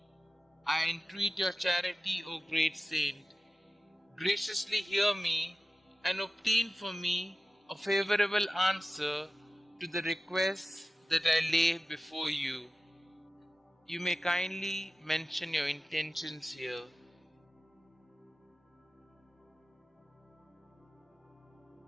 I entreat your charity, O great saint. Graciously hear me and obtain for me a favorable answer to the requests that I lay before you. You may kindly mention your intentions here.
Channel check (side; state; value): both; normal; correlation 0.95